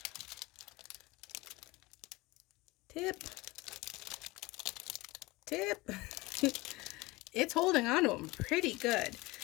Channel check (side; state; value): right; quieter; 21.9 dB